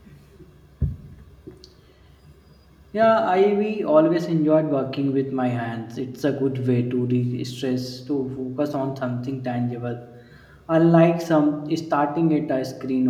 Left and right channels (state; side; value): identical; both; correlation 1.00